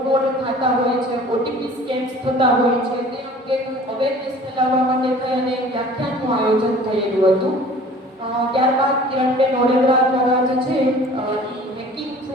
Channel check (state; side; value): normal; both; correlation 0.47